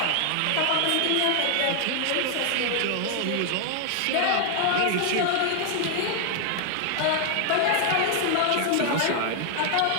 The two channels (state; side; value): different; both; correlation 0.00